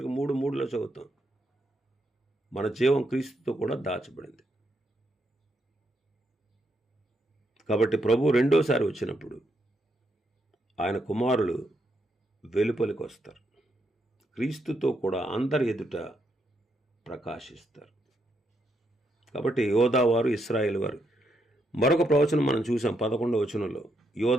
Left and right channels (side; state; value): both; normal; correlation 0.79